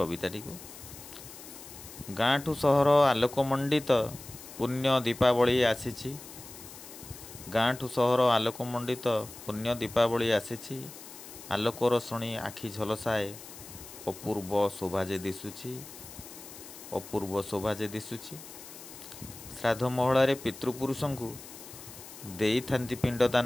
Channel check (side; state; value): left; noise; hiss, 15 dB below the sound